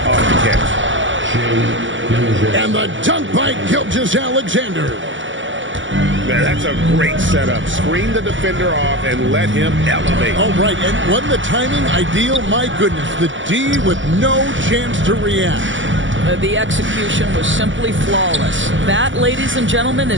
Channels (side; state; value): left; late; 0.56 ms